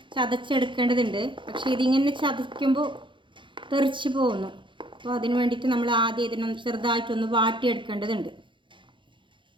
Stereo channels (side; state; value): left; late; 0.24 ms